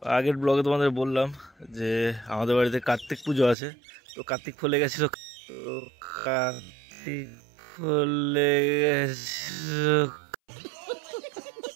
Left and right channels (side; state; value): left; drops out; at 3.6 s